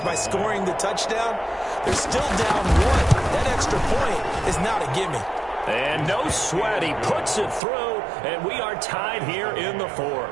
by scoring the touchdown, they're still down 1. That extra point is not a gimme. And no sweat. He puts it through and we are tied here in the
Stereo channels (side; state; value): left; drops out; at 7.6 s